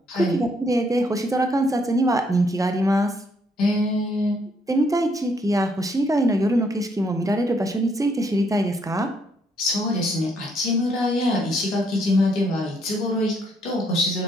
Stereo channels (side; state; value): both; normal; correlation 0.71